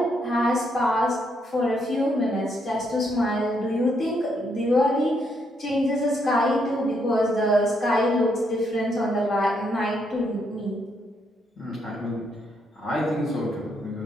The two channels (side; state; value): both; normal; correlation 0.76